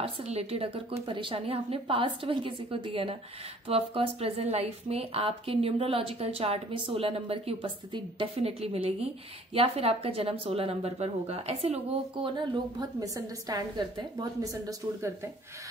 से रिलेटेड अगर कोई परेशानी आपने पास्ट में किसी को दी है ना, तो ऑफकोर्स प्रेजेंट लाइफ में आपके न्यूमरोलॉजिकल चार्ट में 16 नंबर की उपस्थिति डेफिनेटली मिलेगी, या फिर आपका जन्म 16 नंबर पर होगा। ऐसे लोगों को ना लोग बहुत मिसअंडरस्टैंड करते हैं, बहुत मिसअंडरस्टूड करते हैं,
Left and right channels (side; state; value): both; normal; correlation 0.55